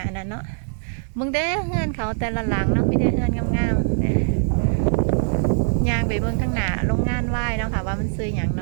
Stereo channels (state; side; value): silent; left; 64 dB below the other